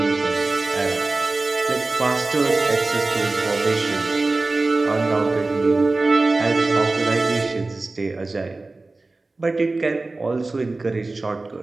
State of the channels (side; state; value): left; quieter; 3.3 dB